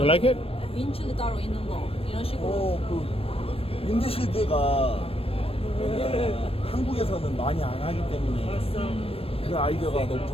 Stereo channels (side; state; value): right; late; 0.28 ms